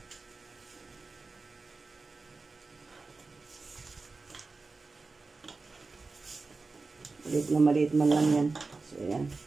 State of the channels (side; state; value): left; quieter; 3.9 dB